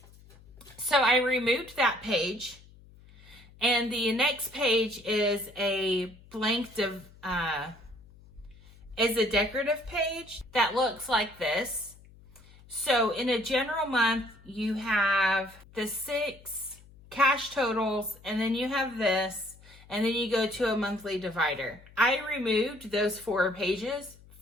So I removed that page, and the next page is a blank is a decorative page that looks like this. So in a general month, you have the 6 cash totals, and then you have this, and then you go to a monthly divider. I removed those 4 pages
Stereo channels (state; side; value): noise; left; hum, 23 dB below the sound